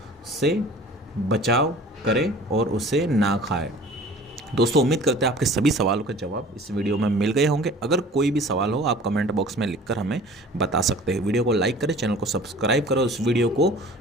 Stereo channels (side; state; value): both; normal; correlation 0.45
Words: से बचाव करें और उसे ना खाएं। दोस्तों, उम्मीद करते हैं आपके सभी सवालों के जवाब इस वीडियो में मिल गए होंगे। अगर कोई भी सवाल हो आप कमेंट बॉक्स में लिखकर हमें बता सकते हैं। वीडियो को लाइक करें, चैनल को सब्सक्राइब करो, इस वीडियो को